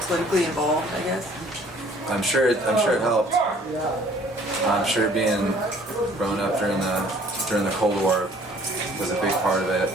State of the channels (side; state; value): both; normal; correlation 0.56